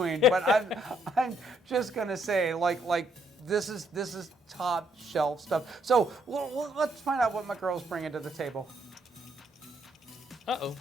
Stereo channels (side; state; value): both; normal; correlation 0.71